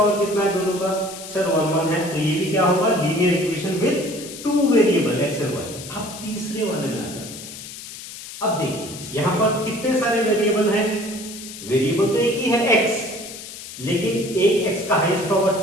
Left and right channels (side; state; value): left; noise; hiss, 12 dB below the sound